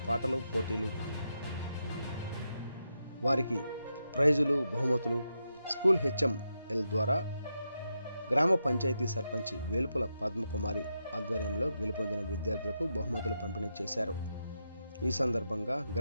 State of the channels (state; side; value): inverted; both; correlation -0.85